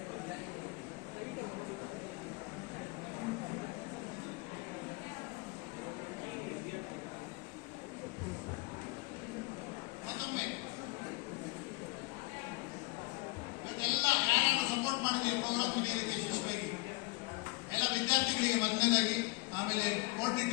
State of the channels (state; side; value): quieter; right; 25.5 dB